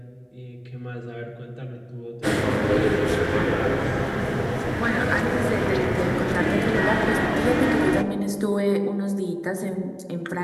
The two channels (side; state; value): both; identical; correlation 1.00